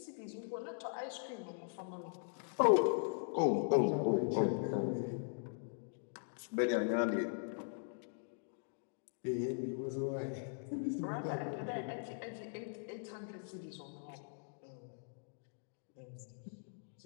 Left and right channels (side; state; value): right; silent; digital silence